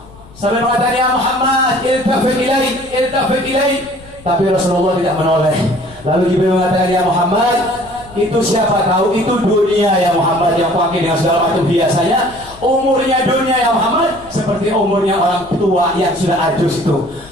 Sampai mengatakan, ya Muhammad, iltafit ilaik. Tapi Rasulullah tidak menoleh. Lalu Jibril mengatakan, ya Muhammad, itu siapa tahu itu dunia ya Muhammad, yang pakai dengan segala macam hiasannya. Umurnya dunia ya Muhammad seperti umurnya orang tua yang sudah ajus itu.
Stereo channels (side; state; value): left; noise; rumble, 22 dB below the sound